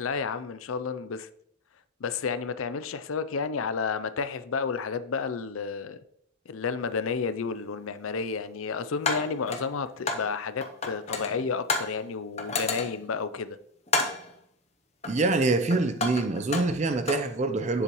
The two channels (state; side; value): normal; both; correlation 0.08